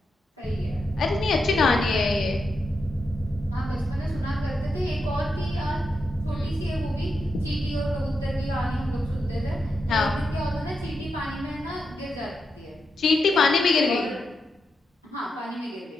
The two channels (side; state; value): both; normal; correlation 0.86